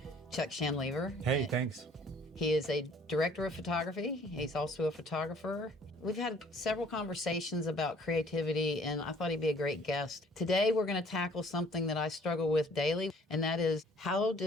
Chuck Shanlever. Hey, thanks. He is a director of photography. He's also a photographer. We've had several conversations about creativity, and I thought he'd be a great guest. Today, we're going to tackle something that I struggle with daily, and that is, how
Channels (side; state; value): both; normal; correlation 0.56